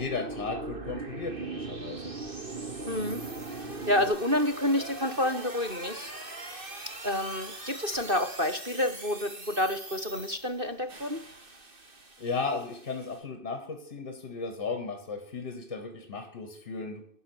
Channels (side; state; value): left; late; 2.6 ms